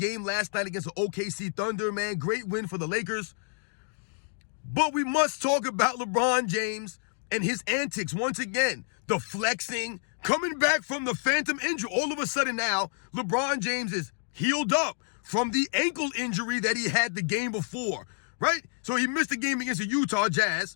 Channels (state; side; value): silent; right; digital silence